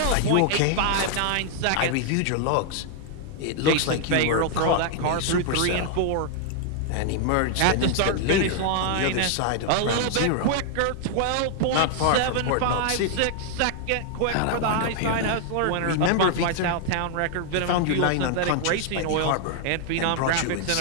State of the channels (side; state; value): both; different; correlation 0.00